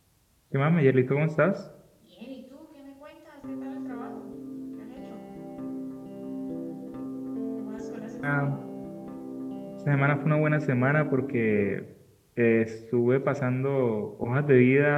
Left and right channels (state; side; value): identical; both; correlation 1.00